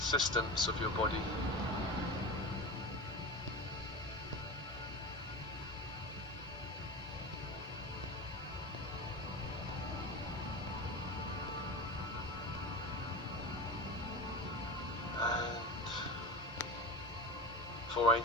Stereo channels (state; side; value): normal; both; correlation 0.27